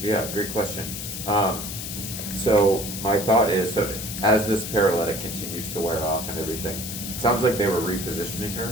great question. So my thought is, so as this paralytic continues to wear off and everything, it sounds like they were repositioning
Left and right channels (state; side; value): noise; left; hiss, 7 dB below the sound